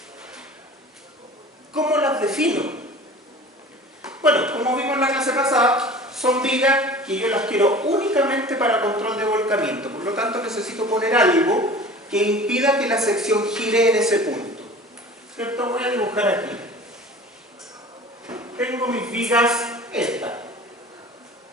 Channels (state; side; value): normal; both; correlation 0.41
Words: ¿Cómo las defino? Bueno, como vimos en la clase pasada, son vigas que yo las quiero únicamente para control de volcamiento. Por lo tanto, necesito poner algo que impida que la sección gire en ese punto. ¿Cierto? Voy a dibujar aquí. Tengo mis vigas, estas.